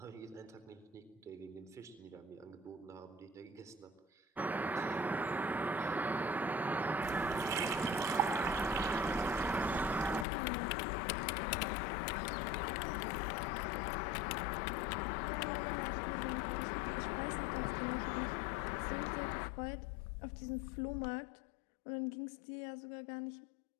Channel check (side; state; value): right; drops out; at 10.2 s